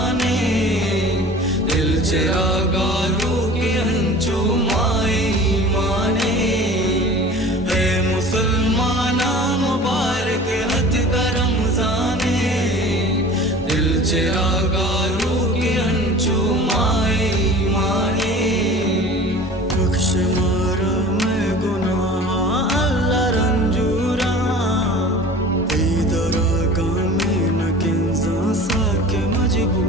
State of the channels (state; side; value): normal; both; correlation 0.41